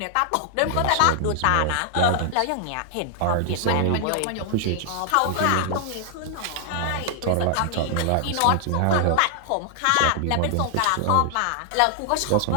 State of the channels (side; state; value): both; different; correlation -0.01